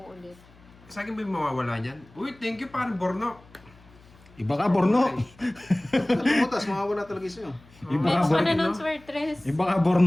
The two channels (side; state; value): left; noise; hum, 26 dB below the sound